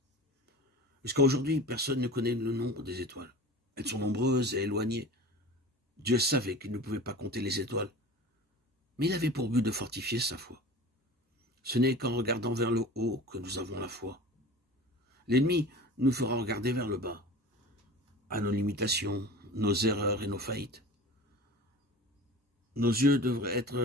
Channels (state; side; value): normal; both; correlation 0.37